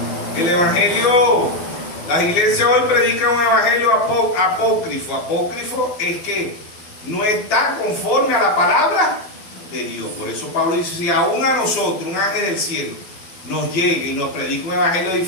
El evangelio, Las iglesias hoy predican un evangelio apócrifo. Apócrifo es que no está conforme a la palabra de Dios. Por eso Pablo dice, si aún a nosotros, un ángel del cielo, nos llegue y nos predica un evangelio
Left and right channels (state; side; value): late; right; 12 ms